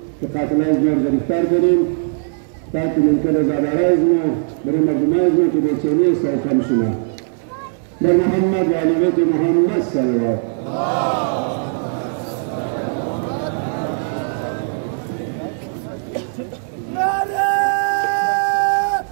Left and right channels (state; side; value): silent; left; 65 dB below the other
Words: که قاتله از ما گرفتار کنیم تاکه ممکن از اداره از ما برای مردم از ما که بیچینی است و کم شما در محمد و علی بیت محمد صلوات.